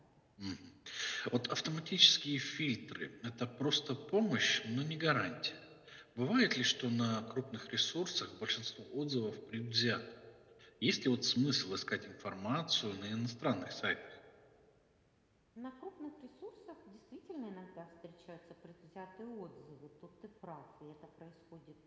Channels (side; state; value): both; identical; correlation 1.00